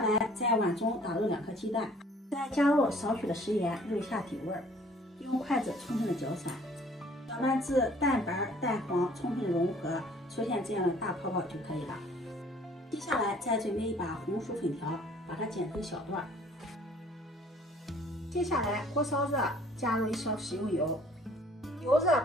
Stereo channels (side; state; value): both; normal; correlation 0.55